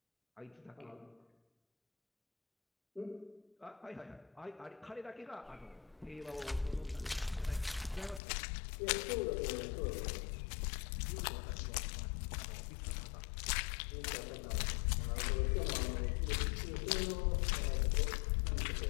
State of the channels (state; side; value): drops out; right; at 8.2 s